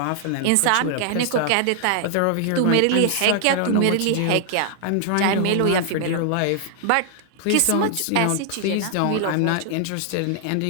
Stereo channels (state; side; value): different; both; correlation 0.00